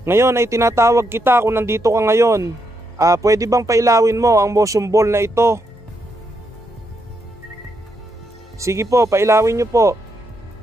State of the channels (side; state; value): both; normal; correlation 0.80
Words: ngayon ay tinatawag kita kung nandito ka ngayon. Pwede bang pailawin mo ang motion ball na ito? Sige po, pailawin nyo po.